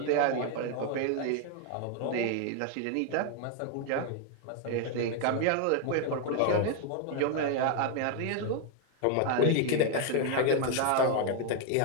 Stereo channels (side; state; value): both; different; correlation 0.01